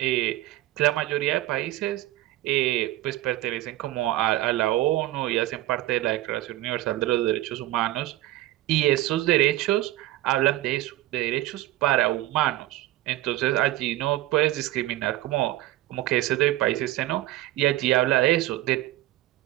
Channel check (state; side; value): quieter; left; 16.0 dB